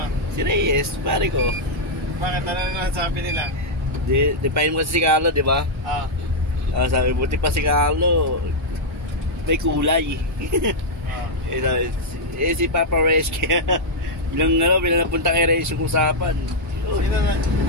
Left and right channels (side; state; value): both; normal; correlation -0.04